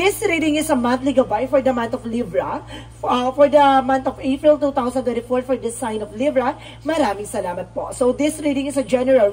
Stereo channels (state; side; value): identical; both; correlation 1.00